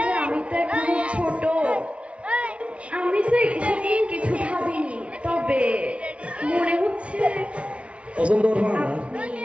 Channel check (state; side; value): late; left; 0.061 ms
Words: আমি তো এখন ছোট আমি তো এসব নিয়ে কিছু ভাবিনি তবে মনে হচ্ছে পছন্দ করবো না আপনি